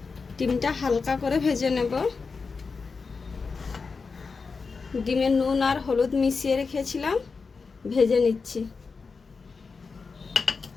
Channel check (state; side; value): quieter; right; 4.8 dB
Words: ডিমটা হালকা করে ভেজে নেব। ডিমে নুন আর হলুদ মিশিয়ে রেখেছিলাম, ভেজে নিচ্ছি।